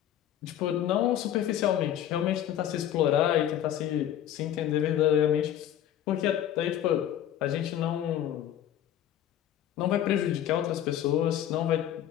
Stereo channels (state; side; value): quieter; right; 11.2 dB